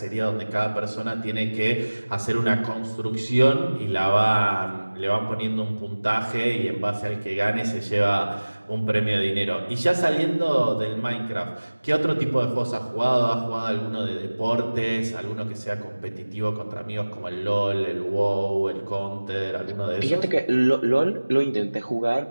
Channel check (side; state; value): both; inverted; correlation -1.00